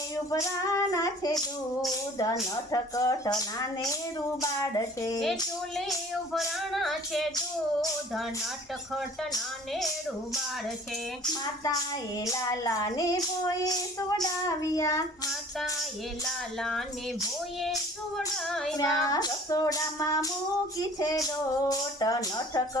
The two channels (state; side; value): normal; both; correlation 0.49